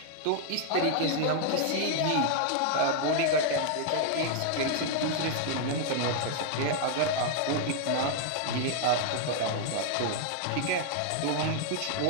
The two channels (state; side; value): different; both; correlation 0.00